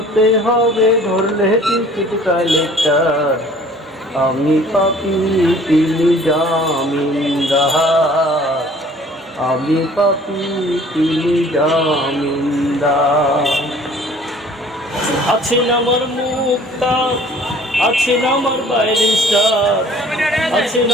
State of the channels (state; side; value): normal; both; correlation 0.52